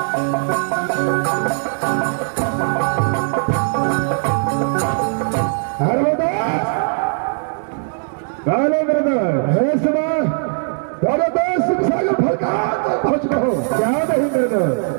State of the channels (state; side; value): silent; left; 62 dB below the other